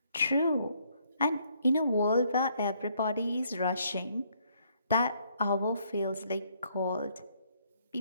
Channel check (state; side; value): inverted; both; correlation -0.68